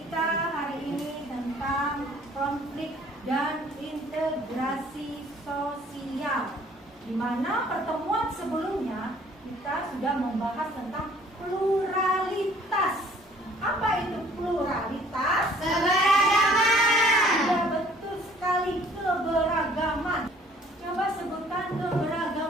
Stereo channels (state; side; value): normal; both; correlation 0.56